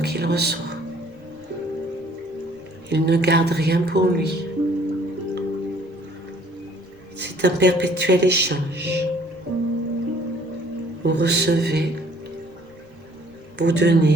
reçoit. Il ne garde rien pour lui. C'est un perpétuel échange. Vous recevez, vous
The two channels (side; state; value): left; noise; rumble, 28 dB below the sound